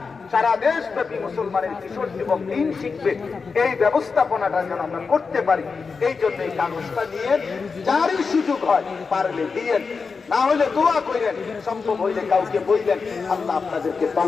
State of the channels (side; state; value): right; quieter; 4.9 dB